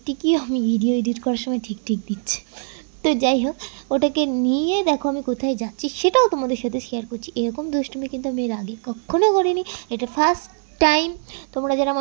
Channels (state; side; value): silent; left; digital silence